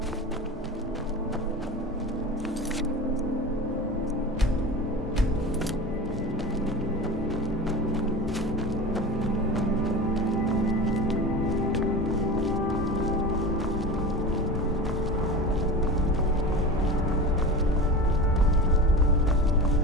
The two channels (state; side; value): normal; both; correlation 0.30